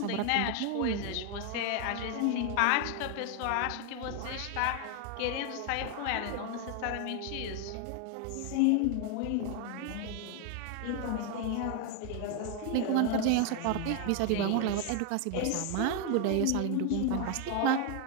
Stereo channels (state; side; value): different; both; correlation 0.01